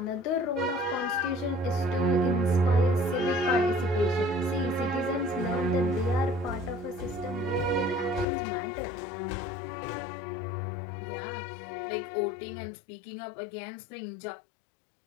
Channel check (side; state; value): right; drops out; at 8.2 s